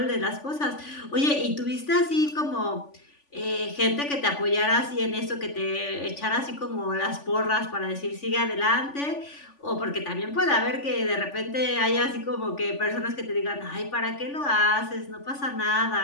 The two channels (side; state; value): right; late; 3.5 ms